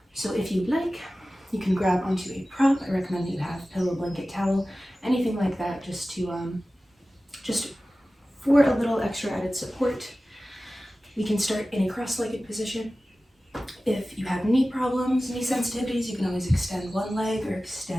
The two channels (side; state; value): both; normal; correlation 0.96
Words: So if you'd like, you can grab onto a prop. I recommend that you have pillow, blanket, towel, anything like that, just for a little extra added support. We can start in a cross-legged position. If you have knee problems, knee sensitivities, you can always extend one leg or